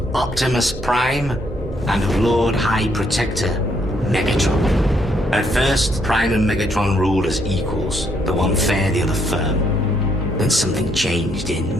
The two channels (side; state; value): both; normal; correlation 0.72